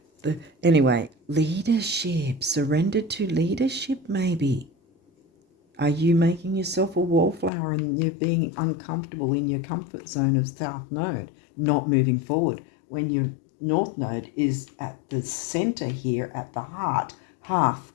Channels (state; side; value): drops out; right; at 7.5 s